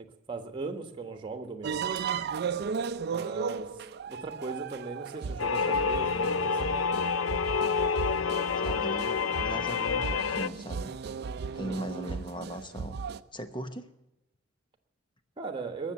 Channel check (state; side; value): normal; both; correlation -0.11